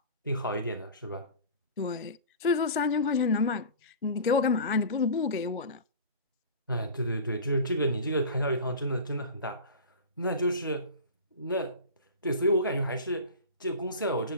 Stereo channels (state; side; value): inverted; both; correlation -0.34